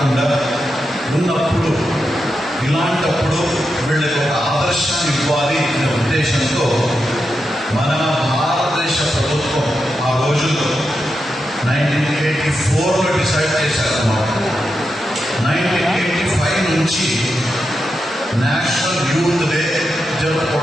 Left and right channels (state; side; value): normal; both; correlation 0.87